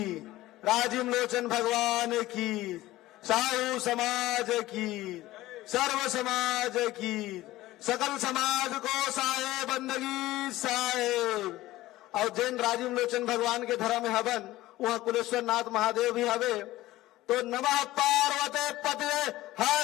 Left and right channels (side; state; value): right; quieter; 16.7 dB